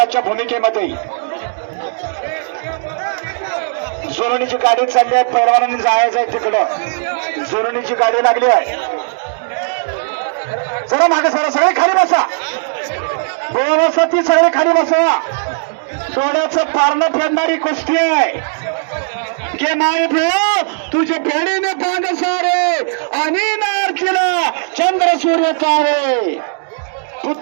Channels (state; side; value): silent; left; digital silence